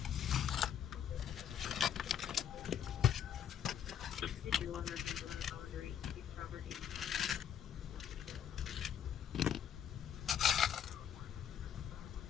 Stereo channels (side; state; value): right; quieter; 9.0 dB